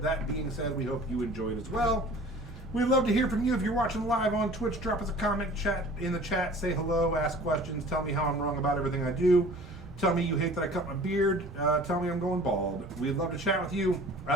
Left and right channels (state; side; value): normal; both; correlation 0.46